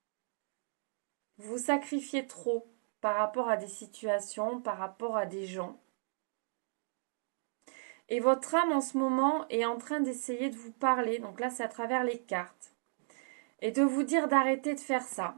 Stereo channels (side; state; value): left; silent; digital silence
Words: Vous sacrifiez trop par rapport à des situations, par rapport à des gens. Et votre âme, en ce moment, est en train d'essayer de vous parler. Donc là, c'est à travers les cartes. Et de vous dire d'arrêter de faire ça.